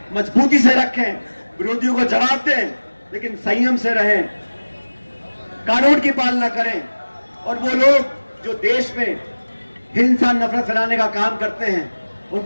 मजबूती से रखें, विरोधियों को जवाब दें, लेकिन संयम से रहें, कानून की पालना करें। और वो लोग जो देश में हिंसा, नफरत फैलाने का काम करते हैं,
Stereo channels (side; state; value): both; inverted; correlation -1.00